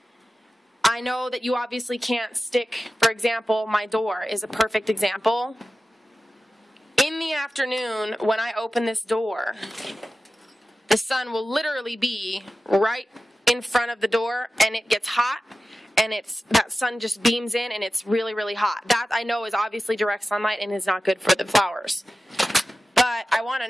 I know that you obviously can't stick, for example, my door is a perfect example. In the afternoon, when I open this door, the sun will literally be right in front of the door, and it gets hot, and that sun just beams in, and it's really, really hot. That, I know, is obviously direct sunlight and is not good for the flowers. But I want to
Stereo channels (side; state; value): both; normal; correlation 0.94